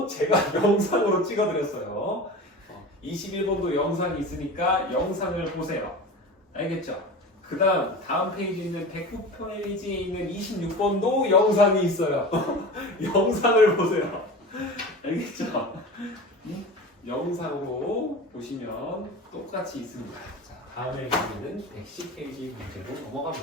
제가 영상으로 찍어드렸어요. 21번도 영상이 있으니까 영상을 보세요. 알겠죠? 그 다음 페이지에 있는 109페이지에 있는 26번도 영상이 있어요. 영상을 보세요. 알겠죠? 영상으로 보시면 똑같이 있습니다. 자, 다음에 보면은 110페이지 문제로 넘어가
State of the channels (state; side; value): normal; both; correlation 0.32